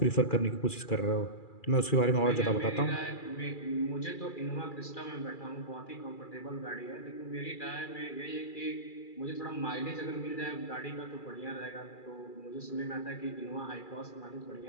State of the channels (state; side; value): late; right; 2.3 ms